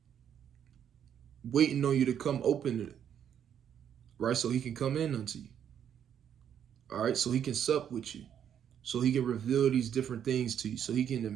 waiting on you to come open it, right? So he can come in unto you. All right. So he can sup with you. So he can reveal these different things to you. So he can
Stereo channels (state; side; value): quieter; left; 9.0 dB